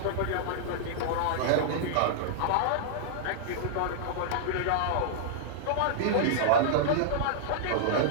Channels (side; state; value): both; different; correlation -0.02